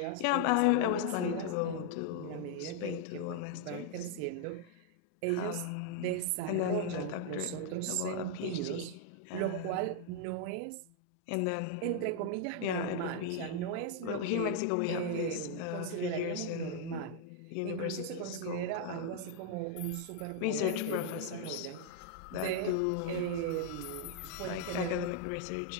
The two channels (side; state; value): both; different; correlation 0.00